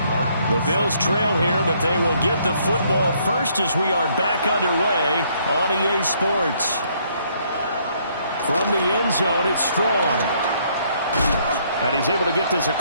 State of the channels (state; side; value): inverted; both; correlation -0.67